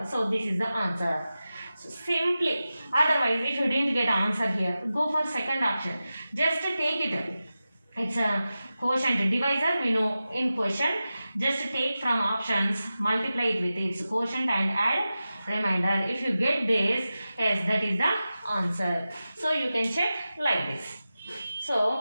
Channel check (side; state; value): both; inverted; correlation -0.94